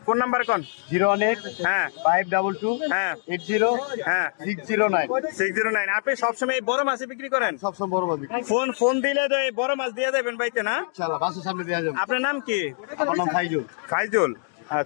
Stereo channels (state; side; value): silent; right; 62 dB below the other